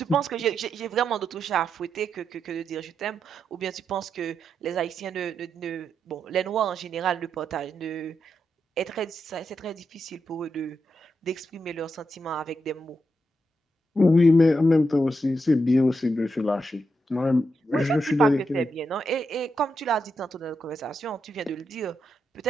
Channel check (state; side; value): normal; both; correlation 0.84